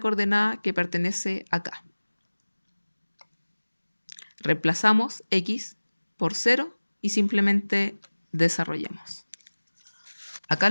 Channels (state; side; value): inverted; both; correlation -1.00